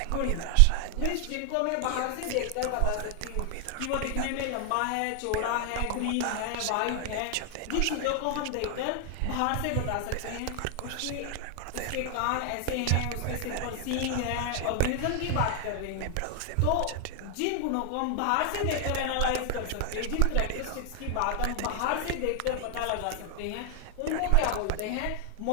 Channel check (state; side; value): different; both; correlation 0.00